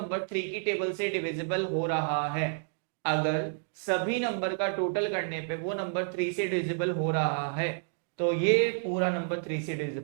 3 की टेबल से डिविजिबल हो रहा है, अगर सभी नंबर का टोटल करने पे वो नंबर 3 से डिविजिबल हो रहा है तो ये पूरा नंबर 3 से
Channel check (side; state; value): left; silent; digital silence